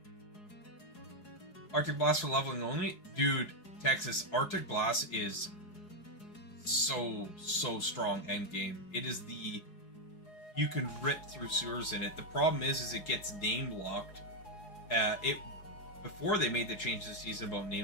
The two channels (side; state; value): right; late; 4.7 ms